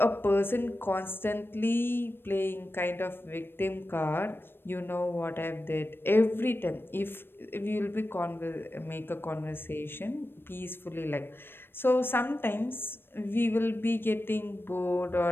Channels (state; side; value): late; right; 0.10 ms